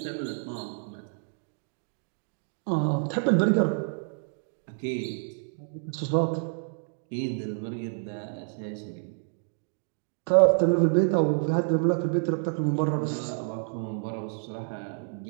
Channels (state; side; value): silent; left; 59 dB below the other